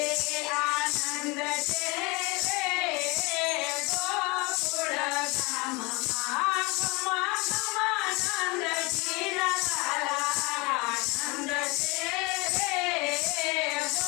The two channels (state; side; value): quieter; right; 26.3 dB